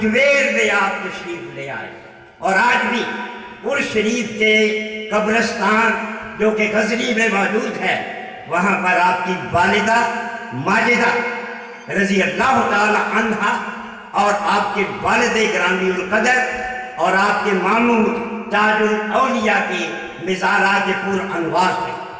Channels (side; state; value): both; identical; correlation 1.00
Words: में आप तशरीफ ले आए। और आज भी उर्स शरीफ के कब्रिस्तान जो कि गजनी में मौजूद है, वहाँ पर आपकी वालिदा माजिदा रज़ी अल्लाह ताला अन्हा और आपके वालिद ग्रामी उल कदर और आपके मामू ताजुल औलिया के मिज़ारात पुर अनवार है।